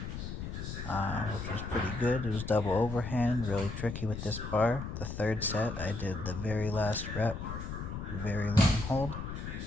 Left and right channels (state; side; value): noise; left; rumble, 6 dB below the sound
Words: was pretty good. It was double overhand, really tricky with this bar. The third set, I did the very last rep, very long hold.